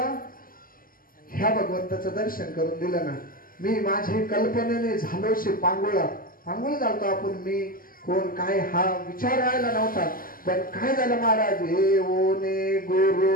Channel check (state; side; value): late; right; 0.42 ms